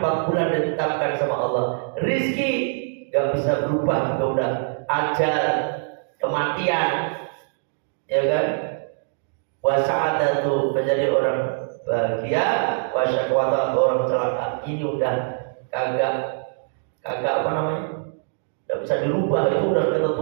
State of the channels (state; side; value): silent; left; digital silence